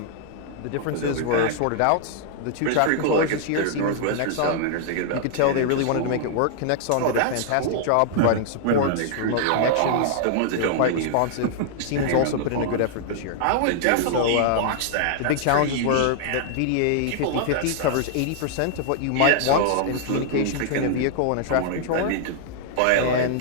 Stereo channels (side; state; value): both; different; correlation -0.01